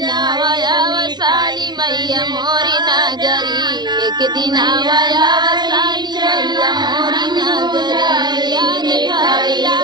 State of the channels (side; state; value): left; late; 0.20 ms